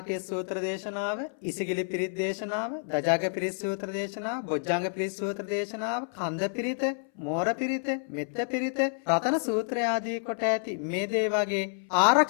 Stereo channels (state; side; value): silent; right; 59 dB below the other